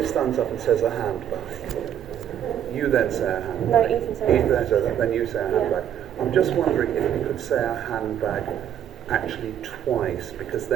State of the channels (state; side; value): quieter; left; 9.9 dB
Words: stands up and says a handbag. You then say a handbag. No, Ethan says Ethan says it, then you say a handbag. I'm just wondering if we could say a handbag actually twice, because